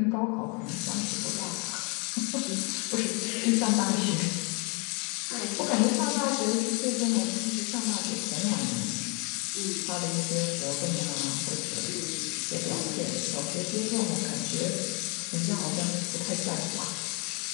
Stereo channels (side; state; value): right; quieter; 33.2 dB